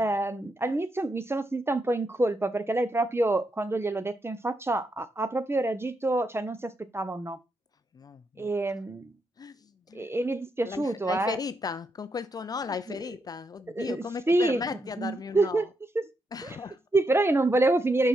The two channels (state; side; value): normal; both; correlation 0.81